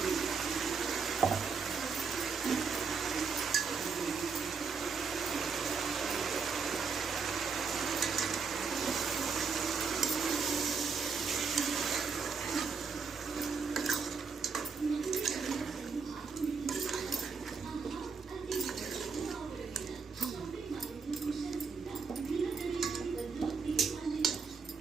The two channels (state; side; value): quieter; left; 5.4 dB